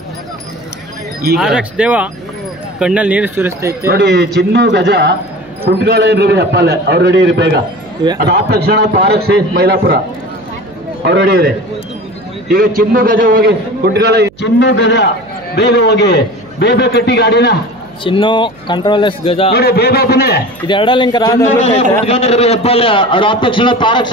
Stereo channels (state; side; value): noise; right; hum, 26 dB below the sound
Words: ಈಗ ದೇವ ಕಣ್ಣಲ್ಲಿ ನೀರು ಸುರಿಸ್ತೈತೆ ನೋಡಿ, ಚಿನ್ನು ಗಜ ಕುಂಟ್ಗಾಳ ಹಪ್ಪಲೆ ಅವ್ರು ರೆಡಿ ಇರಿ ಬೇಗ. ಅದಾದ ತಕ್ಷಣ ತಾರಕ್ ಶೇಷ್ ಮೈಲಾಪುರ ಅವ್ರು ರೆಡಿ ಇದೆ. ಈಗ ಚಿನ್ನು ಗಜ ಹೋಗಿ ಕುಂಟ್ಗಾಳ, ಚಿನ್ನು ಗಜ ಬೇಗ ಹೋಗಿ, ಬೇಗ ಕಟ್ಟಿ ಗಾಡಿನ. ಚಿನ್ನು ಕಂಟ್ರೋಲೆಸ್ ಗಜ ನೋಡಿ ಬೇಗ ಬನ್ನಿ. ಇದು ಎರಡ ಲಿಂಕ್ ಹೆಬ್ಬಾಲೆ ಅದಾದ ತಕ್ಷಣ ತಾರಕ್